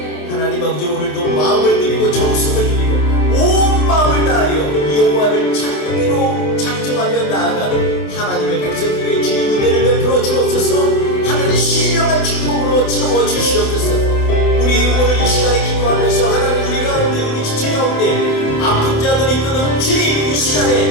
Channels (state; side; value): late; right; 28 ms